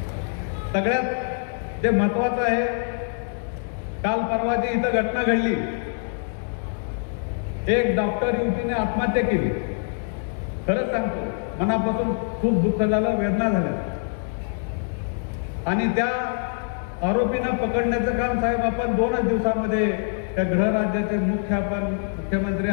सगळ्यात जे महत्वाचं आहे, काल परवाची इथं घटना घडली, एक डॉक्टर युवतीने आत्महत्या केली. खरंच सांगतो, मनापासून खूप दुःख झालं, वेदना झाल्या आणि त्या आरोपींना पकडण्याचं काम साहेब आपण 2च दिवसामध्ये त्या गृहराज्याचे मुख्यमंत्री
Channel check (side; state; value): right; silent; 62 dB below the other